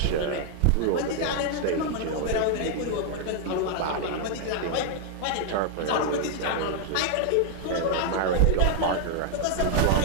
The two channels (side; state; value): both; different; correlation 0.00